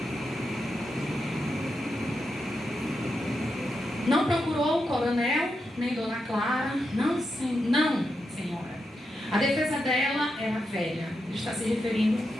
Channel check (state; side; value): normal; both; correlation 0.86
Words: Não procurou o coronel, nem Dona Clara, não, senhora. A defesa dela era velha, ele está se referindo